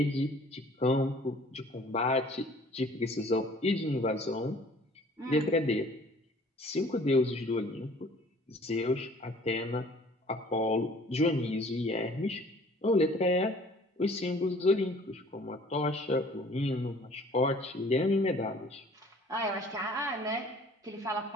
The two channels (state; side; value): normal; both; correlation 0.53